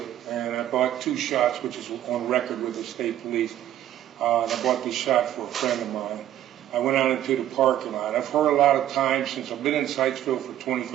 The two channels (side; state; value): left; quieter; 12.1 dB